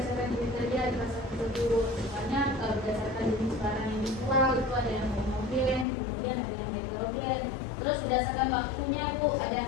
jenis saja di pasar tersebut. Misalnya berdasarkan jenis barang yang dijual itu ada yang homogen, kemudian ada yang heterogen. Terus berdasarkan waktunya Bu, ada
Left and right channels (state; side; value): drops out; right; at 5.9 s